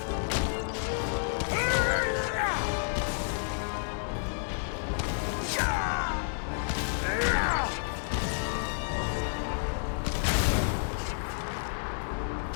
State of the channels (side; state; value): right; silent; digital silence